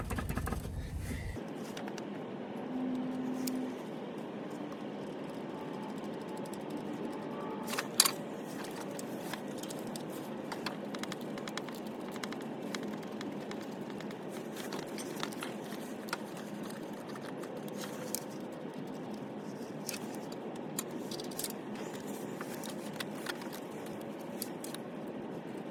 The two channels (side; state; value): both; identical; correlation 1.00